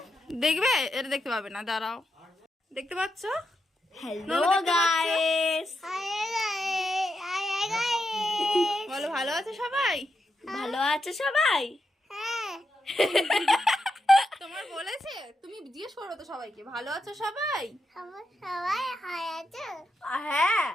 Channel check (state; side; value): normal; both; correlation 0.85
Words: দেখবে? এটা দেখতে পাবে না, দাঁড়াও। দেখতে পাচ্ছ? Hello guys. Hi guys. বলো, ভালো আছে সবাই? ভালো আছে সবাই? হ্যাঁ। তোমার বলেছে? তুমি জিজ্ঞেস করো তো সবাইকে, ভালো আছো সবাই? সবাই হাই আছে? হ্যাঁ,